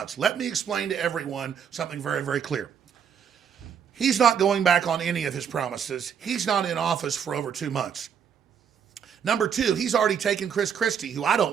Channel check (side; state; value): left; quieter; 7.7 dB